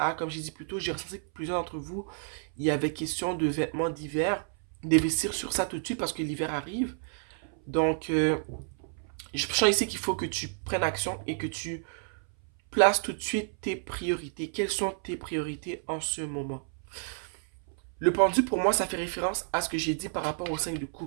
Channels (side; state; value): left; silent; 58 dB below the other